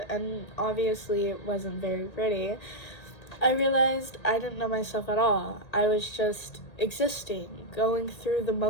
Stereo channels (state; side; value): late; right; 1.8 ms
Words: and obviously it wasn't very pretty. I realized I didn't know myself at all. I was just existing, going through the